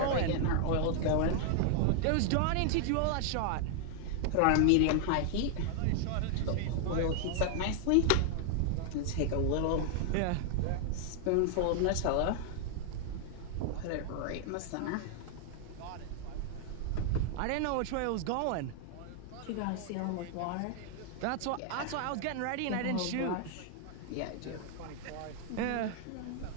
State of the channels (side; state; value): both; different; correlation 0.00